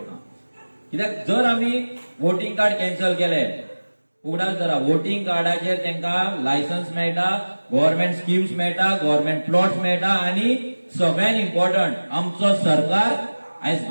कित्याक जर आमी वोटिंग कार्ड कॅन्सल केले, उगडास धरा, वोटिंग कार्डाचेर तांकां लायसन्स मेळटा, गव्हर्नमेंट स्किम्स मेळटा, गव्हर्नमेंट प्लॉट्स मेळटा, आनी सगळ्यात इम्पॉर्टंट आमचो सरकार आयज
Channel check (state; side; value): inverted; both; correlation -1.00